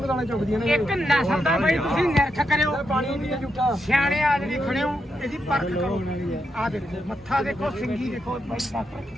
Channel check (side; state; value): both; normal; correlation 0.83